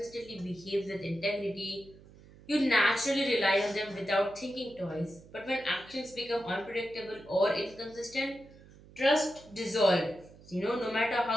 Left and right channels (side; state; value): right; noise; hum, 22 dB below the sound